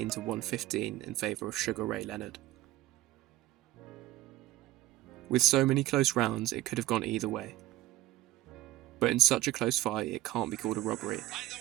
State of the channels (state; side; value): quieter; left; 16.2 dB